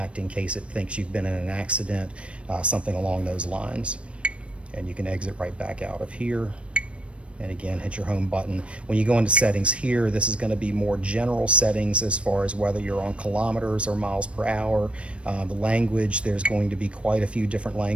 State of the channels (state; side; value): late; left; 0.060 ms